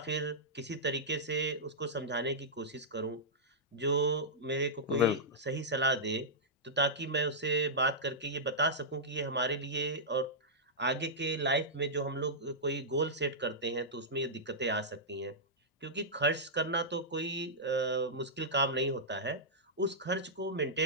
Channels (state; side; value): normal; both; correlation -0.13